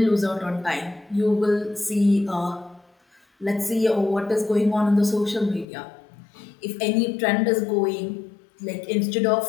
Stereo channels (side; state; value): right; drops out; at 5.7 s